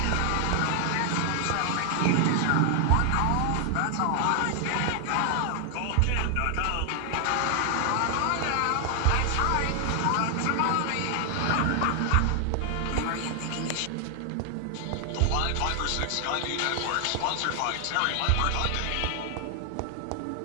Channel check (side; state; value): both; different; correlation 0.00